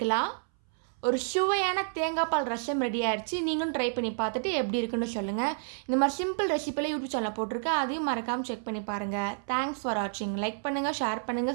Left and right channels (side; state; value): left; silent; 58 dB below the other